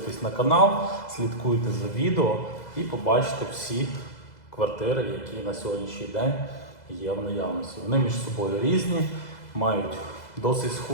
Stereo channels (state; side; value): late; right; 2.0 ms